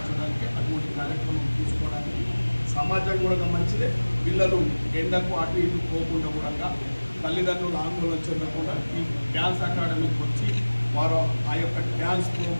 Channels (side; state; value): both; inverted; correlation -1.00